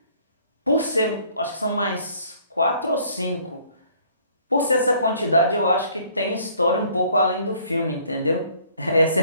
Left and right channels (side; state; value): both; inverted; correlation -0.59